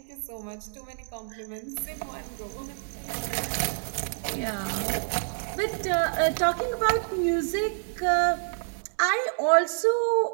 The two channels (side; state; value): left; silent; 59 dB below the other